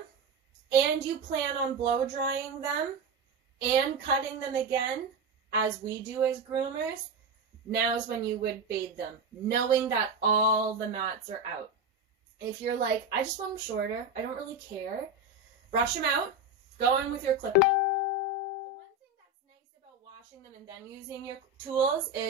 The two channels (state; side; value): quieter; left; 3.1 dB